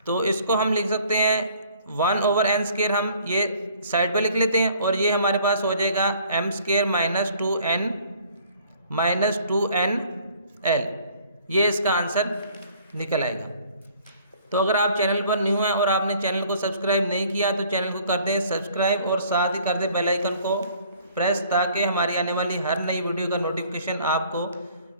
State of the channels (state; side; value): inverted; both; correlation -0.56